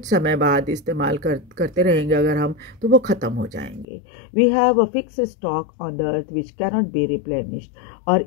समय बाद इस्तेमाल करते रहेंगे अगर हम, तो वो ख़त्म हो जाएंगे। We have a fix stock on the earth which cannot be replenished. और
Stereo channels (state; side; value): drops out; right; at 3.9 s